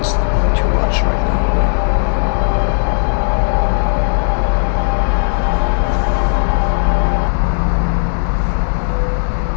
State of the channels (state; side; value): silent; right; digital silence